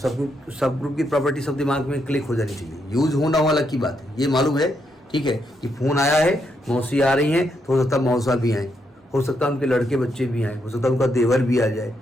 ग्रुप की प्रॉपर्टी सब दिमाग में क्लिक हो जानी चाहिए, यूज होना वाला की बात है, ये मालूम है ठीक है कि फोन आया है, मौसी आ रही हैं, तो हो सकता है मौसा भी आए, हो सकता है उनके लड़के बच्चे भी आए, हो सकता है उनका देवर भी आ जाए,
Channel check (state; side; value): normal; both; correlation 0.79